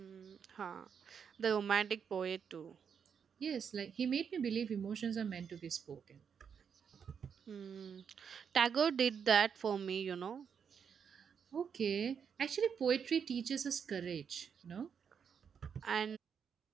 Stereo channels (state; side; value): quieter; left; 7.1 dB